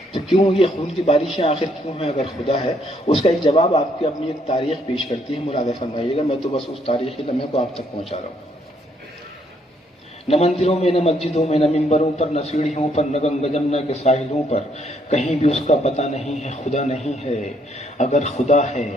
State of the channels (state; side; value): normal; both; correlation 0.70